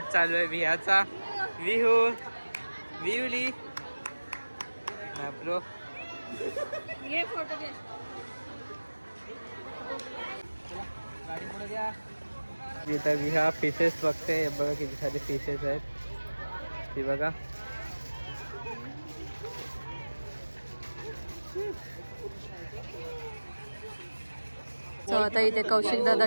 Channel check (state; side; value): inverted; both; correlation -1.00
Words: चालू आहे विहाचा. विहू विहुली ब्रो. ये फोटो घे. गाडी पुढे द्या. इथं विहा फिशेस बघते. बघा किती सारे फिशेस आहेत ती बघा. So, आता इथे कौशिक दादा